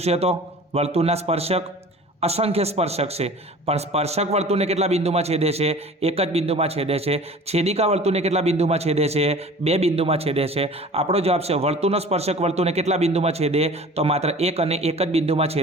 તો વર્તુળના સ્પર્શક અસંખ્ય સ્પર્શક છે, પણ સ્પર્શક વર્તુળને કેટલા બિંદુમાં છેદે છે? એક જ બિંદુમાં છેદે છે। છેદિકા વર્તુળને કેટલા બિંદુમાં છેદે છે? 2 બિંદુમાં છેદે છે। આપણો જવાબ છે વર્તુળનો સ્પર્શક વર્તુળને કેટલા બિંદુમાં છેદે? તો માત્ર એક અને એક જ બિંદુમાં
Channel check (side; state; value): both; normal; correlation 0.43